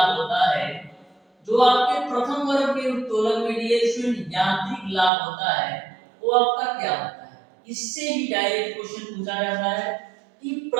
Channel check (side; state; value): left; drops out; at 5.1 s